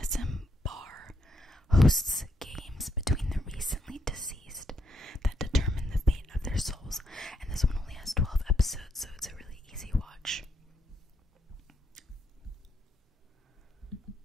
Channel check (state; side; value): normal; both; correlation 0.77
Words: Bar hosts games between the recently deceased that determine the fate of their souls, and this one only has 12 episodes, so it's a really easy watch.